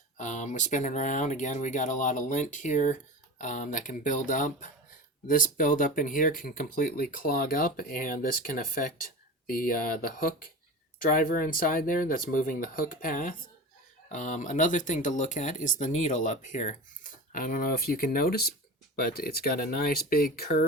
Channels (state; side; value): normal; both; correlation 0.30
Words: We're spinning around again. We got a lot of lint here that can build up. This buildup in here can completely clog up, and this can affect the hook driver inside there that's moving the hook path. Another thing to look at is the needle up here. I don't know if you can notice, but it's got a nice big